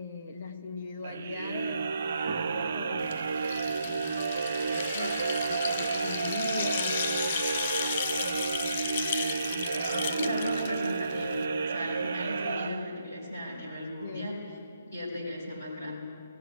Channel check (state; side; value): inverted; both; correlation -0.75